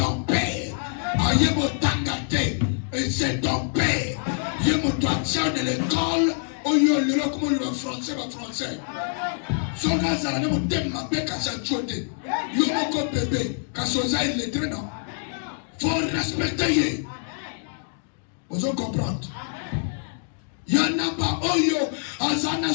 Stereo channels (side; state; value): right; silent; digital silence